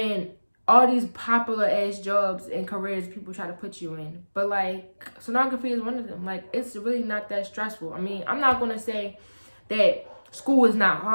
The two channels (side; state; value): both; inverted; correlation -1.00